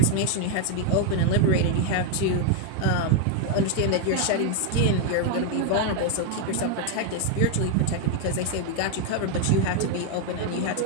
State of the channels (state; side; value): different; both; correlation 0.01